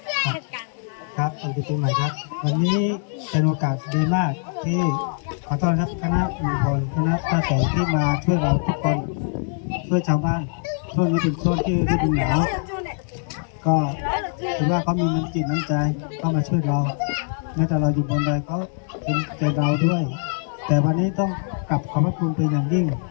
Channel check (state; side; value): silent; right; 58 dB below the other